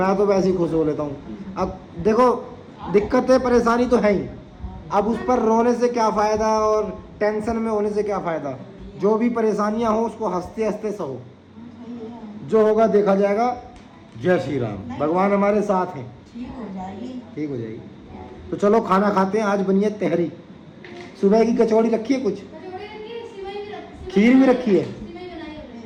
तो वैसे ही खुश हो लेता हूँ। अब देखो दिक्कतें परेशानी तो है ही, अब उस पर रोने से क्या फ़ायदा और टेंशन में होने से क्या फ़ायदा। जो भी परेशानियाँ हो उसको हंसते हंसते सहो, जो होगा देखा जाएगा। जय श्री राम, भगवान हमारे साथ हैं, ठीक हो जाएगी। तो चलो खाना खाते हैं। आज बनी है तहरी, सुबह की कचौड़ी रखी है, कुछ खीर भी रखी है।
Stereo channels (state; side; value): identical; both; correlation 1.00